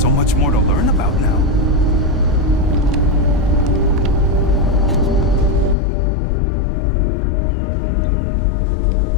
so much more to learn about now.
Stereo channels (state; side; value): drops out; right; at 5.8 s